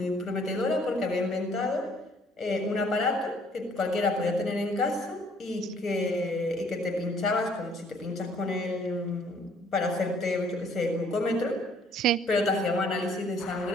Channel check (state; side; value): normal; both; correlation 0.61